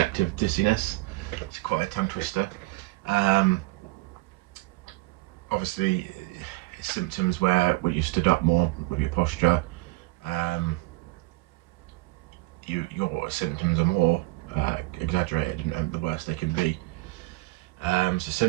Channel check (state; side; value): quieter; left; 21.8 dB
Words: dizziness. It's quite a tongue twister. Obviously it's symptoms where you stood up more with your posture, your symptoms are more exaggerated and the worse they can be. So